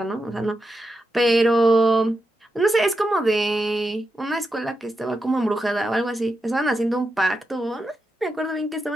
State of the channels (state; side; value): normal; both; correlation 0.87